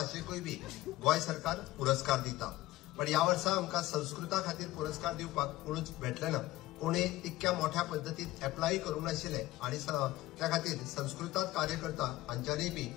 बी गोंय सरकार पुरस्कार दिता. पण या वर्सा आमकां संस्कृता खातीर पुरस्कार दिवपाक कोणूच भेटले ना. कोणी तितक्या मोठ्या पद्दतीन एप्लाय करूंक नाशिल्ले आनी त्या खातीर संस्कृतात कार्य करता हांच्यांनी बी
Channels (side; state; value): right; quieter; 17.2 dB